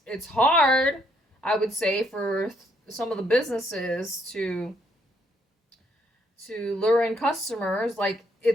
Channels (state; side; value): normal; both; correlation 0.71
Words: hard, I would say, for some of the businesses to lure in customers. Like